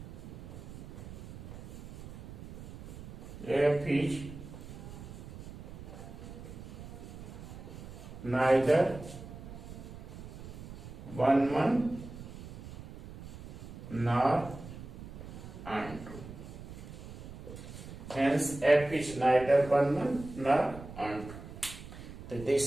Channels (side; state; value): right; noise; rumble, 13 dB below the sound